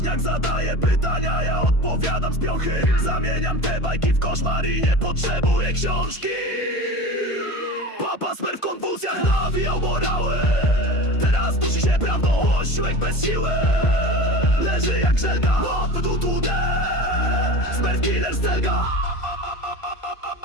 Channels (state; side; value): late; right; 1.5 ms